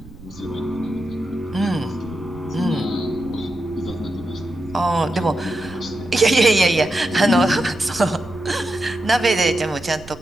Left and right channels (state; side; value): noise; right; rumble, 19 dB below the sound